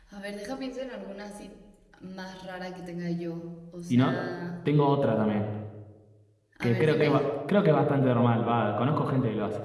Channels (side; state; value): both; identical; correlation 1.00